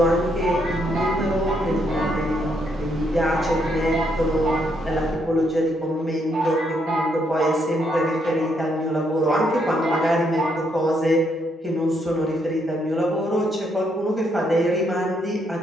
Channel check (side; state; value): both; normal; correlation 0.74